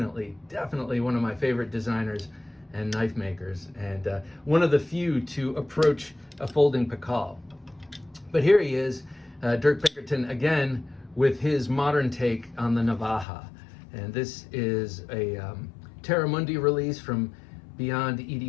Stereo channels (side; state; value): right; drops out; at 13.2 s